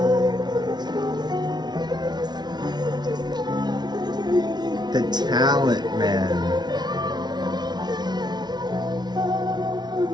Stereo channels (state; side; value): late; left; 0.20 ms